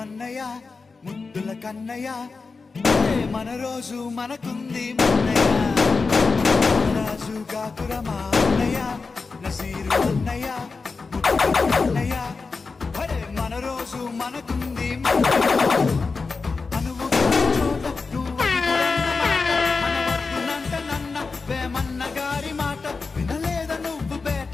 అన్నయ్య ముద్దుల కన్నయ్య మన రోజు మనకుంది మన్నయ్య. నారాజు కాకురమా అన్నయ్య నజీరు అన్నయ్య ముద్దుల కన్నయ్య మన రోజు మనకుంది మన్నయ్య.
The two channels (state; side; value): quieter; right; 4.4 dB